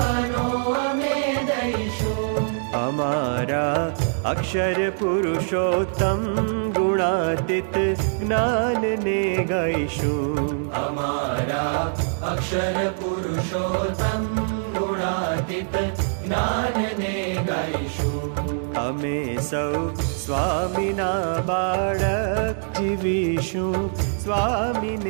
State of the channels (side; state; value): left; silent; digital silence